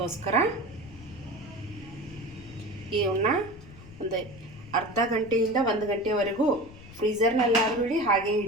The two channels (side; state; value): left; noise; rumble, 18 dB below the sound